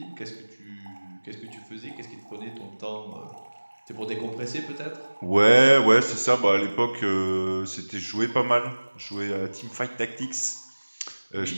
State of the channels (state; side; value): inverted; both; correlation -1.00